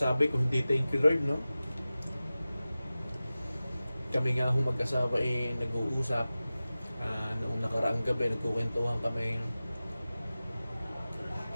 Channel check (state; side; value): inverted; both; correlation -0.96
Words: kung hindi thank you Lord, no? Kami nga ho mag-asawa nag-uusap. Noong nakaraang gabi, nagkukwentuhan kami.